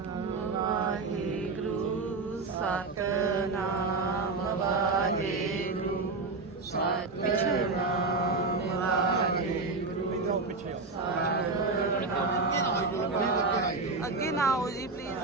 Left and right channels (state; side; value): quieter; left; 3.8 dB